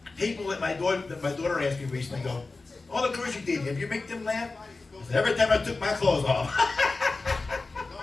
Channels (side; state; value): right; quieter; 3.6 dB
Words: people that my daughter asked me recently go, all the girls you did, have you make them laugh? I said, every time I took my clothes off.